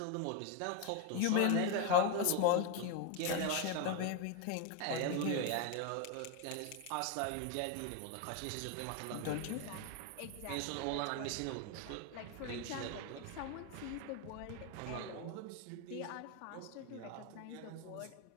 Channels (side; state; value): both; different; correlation 0.01